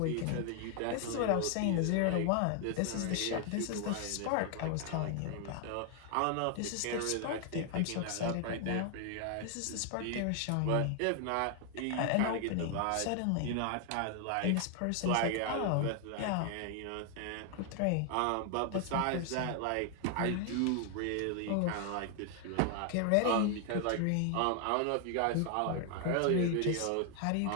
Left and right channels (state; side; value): different; both; correlation 0.00